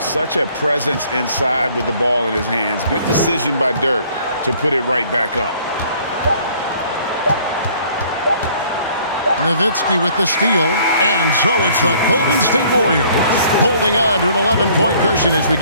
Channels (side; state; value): both; inverted; correlation -0.58